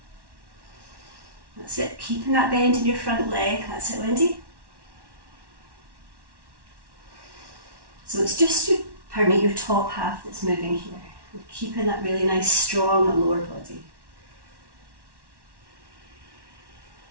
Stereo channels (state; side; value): late; left; 1.1 ms